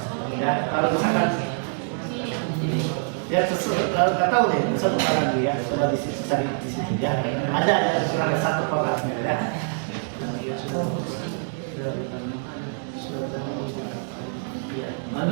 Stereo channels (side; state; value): left; silent; digital silence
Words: Ya, kalau misalkan ya nggak tahu deh, besok lagi ya, coba di situ cari di situ ya. Ada yang kurang satu podcastnya ya.